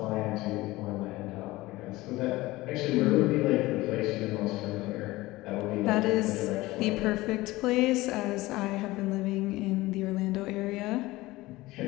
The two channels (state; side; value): quieter; right; 19.1 dB